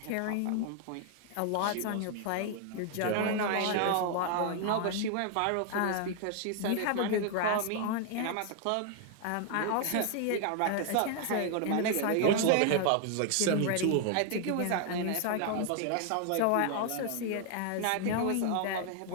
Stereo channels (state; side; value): different; both; correlation 0.00